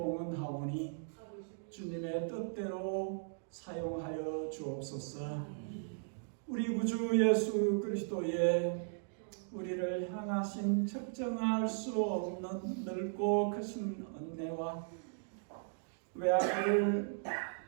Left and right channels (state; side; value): silent; left; digital silence